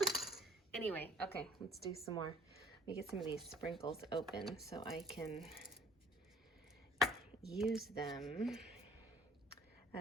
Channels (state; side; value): normal; both; correlation 0.53